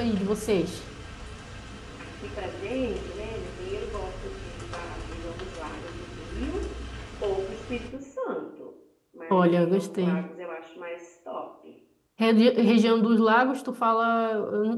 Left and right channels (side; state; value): both; identical; correlation 1.00